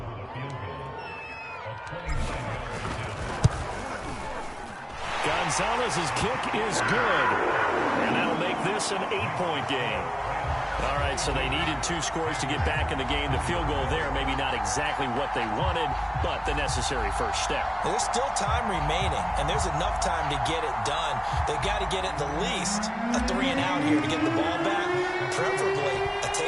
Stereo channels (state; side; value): identical; both; correlation 1.00